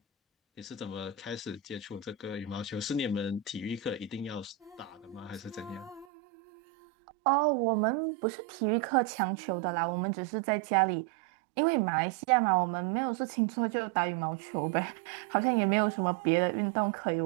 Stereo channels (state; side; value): drops out; left; at 6.1 s